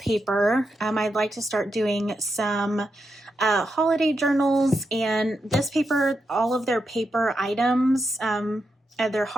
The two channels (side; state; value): both; normal; correlation 0.85